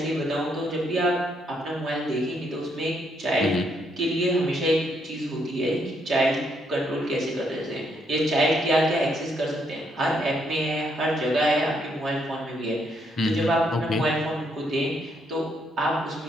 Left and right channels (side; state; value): both; normal; correlation 0.74